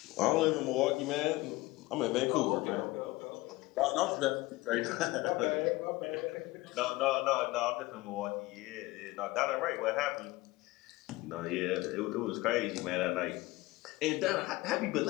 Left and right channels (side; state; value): right; quieter; 20.1 dB